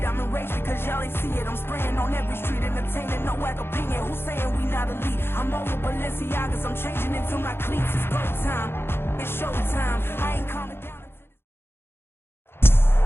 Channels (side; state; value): right; late; 0.11 ms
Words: I'm enraged because y'all ain't see it. I'm spraying on every street, entertaining no whack opinion. Who's saying we not elite? I'm over Balenciagas. I'm changing into my cleats. It's go time. It's show time. I ain't calming down.